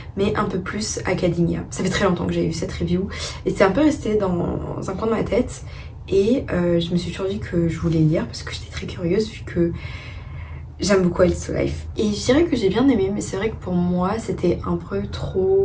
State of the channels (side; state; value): both; identical; correlation 1.00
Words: mais un peu plus academia. Ça fait très longtemps que j'avais vu cette review et c'est un peu resté dans un coin de ma tête et je me suis toujours dit que je voulais le lire parce que j'étais très curieuse vu que j'aime beaucoup A Little Life. Et je dirais que j'ai bien aimé, mais c'est vrai que pour moi c'était un peu